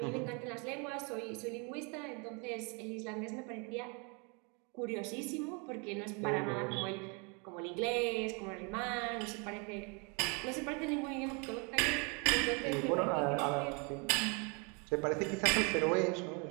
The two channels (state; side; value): quieter; left; 33.1 dB